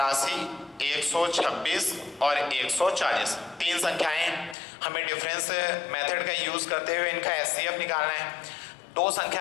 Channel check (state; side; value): drops out; right; at 4.5 s